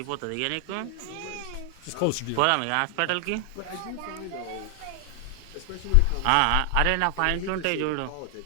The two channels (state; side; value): different; both; correlation 0.00